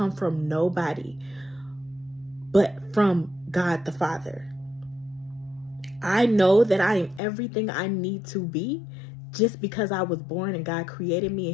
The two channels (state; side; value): drops out; right; at 7.2 s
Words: from nobody, but from God the Father. I know that I am everything I need to be just because I was born and God created me